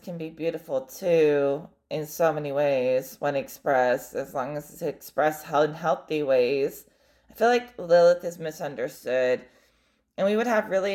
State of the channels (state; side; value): identical; both; correlation 1.00